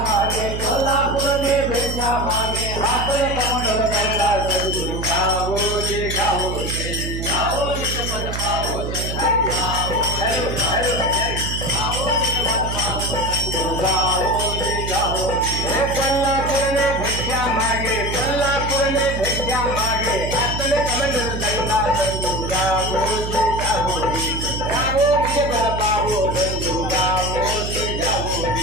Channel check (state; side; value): noise; right; hum, 4 dB below the sound